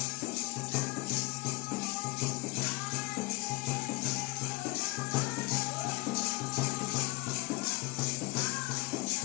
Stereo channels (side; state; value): right; quieter; 24.5 dB